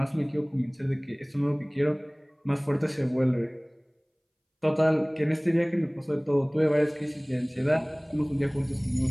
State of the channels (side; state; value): both; identical; correlation 1.00